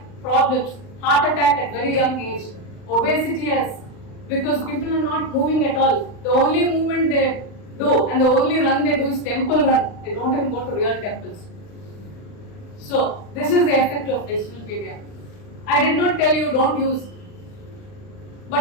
problems, heart attack at very young age, obesity has, because people are not moving at all. The only movement they do and the only run they do is temple run. They don't even go to real temples. So this is the effect of digital media. I did not tell you don't use,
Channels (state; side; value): late; right; 39 ms